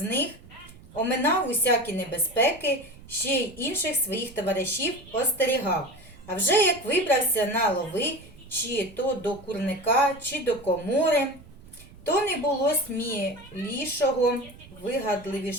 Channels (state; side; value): noise; right; rumble, 21 dB below the sound